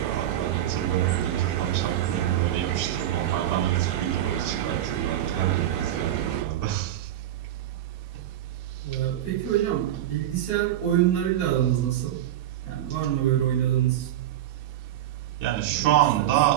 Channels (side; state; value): left; quieter; 12.3 dB